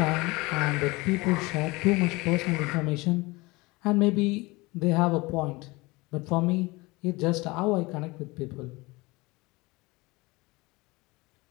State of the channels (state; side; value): quieter; right; 23.4 dB